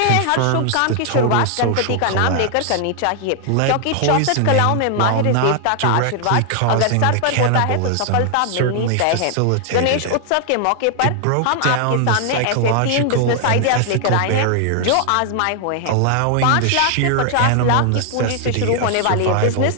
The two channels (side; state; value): both; different; correlation 0.00